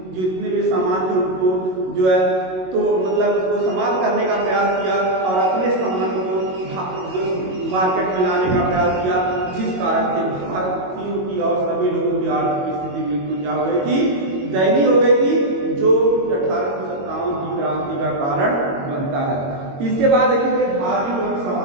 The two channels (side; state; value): left; late; 22 ms